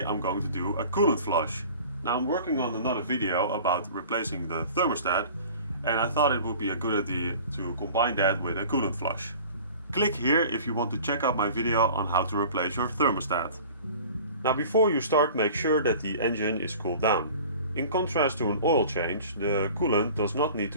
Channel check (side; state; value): both; inverted; correlation -0.43